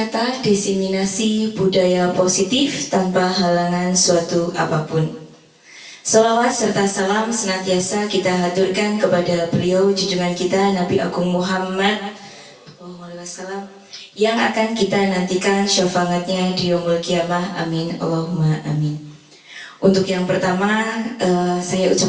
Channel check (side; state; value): both; identical; correlation 1.00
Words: desiminasi budaya positif tanpa halangan suatu apapun. Salawat serta salam senantiasa kita haturkan kepada beliau junjungan kita Nabi Agung Muhammad SAW yang akan kita nantikan syafaatnya di yaumul kiamah. Amin Allahumma amin. Untuk yang pertama, saya